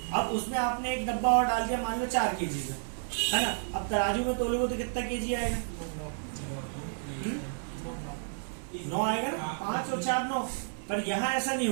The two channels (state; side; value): silent; left; digital silence